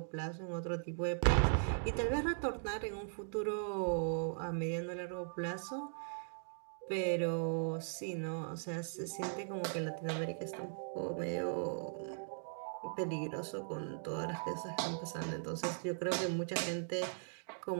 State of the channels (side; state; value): left; silent; digital silence